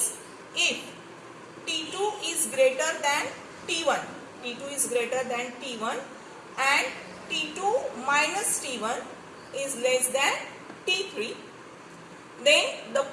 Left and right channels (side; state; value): both; identical; correlation 1.00